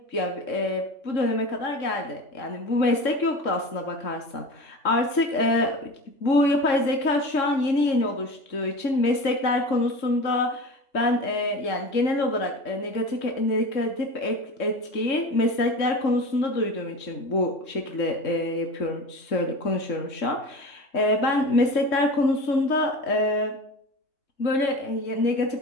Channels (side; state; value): right; late; 3.7 ms